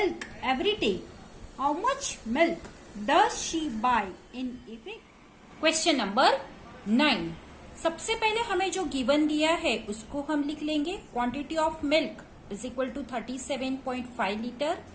every day, how much milk does she buy in a week? Question number 9. सबसे पहले हमें जो given दिया है उसको हम लिख लेंगे. Quantity of milk is equal to 37.5 litre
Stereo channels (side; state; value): both; identical; correlation 1.00